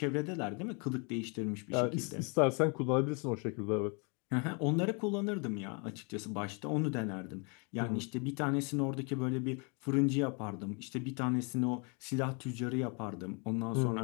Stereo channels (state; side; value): quieter; right; 34.9 dB